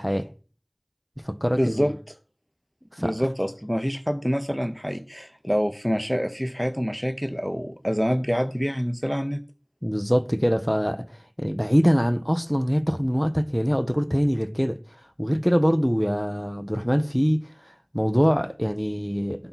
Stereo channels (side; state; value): both; identical; correlation 1.00